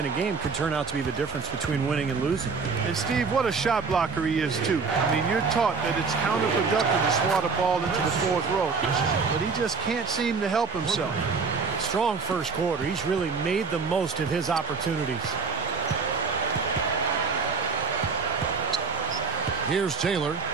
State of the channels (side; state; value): left; quieter; 4.9 dB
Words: a game could turn out to be the difference between winning and losing. And Steve, what a shot blocker he is too. I mean, you're taught that it's counterproductive to swat a ball into the fourth row, but he just can't seem to help himself. Strong first quarter. He's really made the most of his opportunities. Here's Taylor.